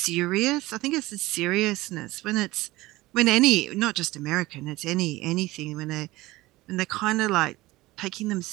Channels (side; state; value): left; quieter; 19.0 dB